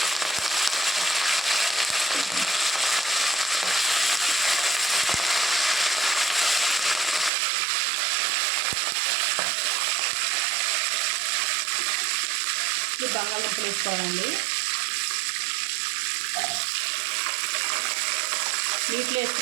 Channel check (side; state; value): left; drops out; at 7.3 s